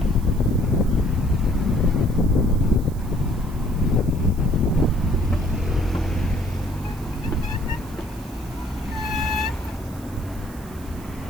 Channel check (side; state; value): right; noise; hiss, 21 dB below the sound